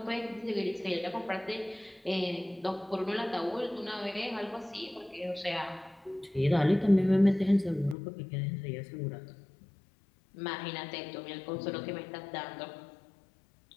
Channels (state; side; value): drops out; right; at 8.0 s